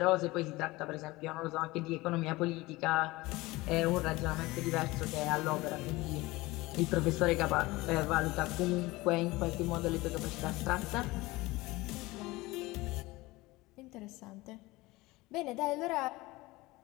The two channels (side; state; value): right; quieter; 20.7 dB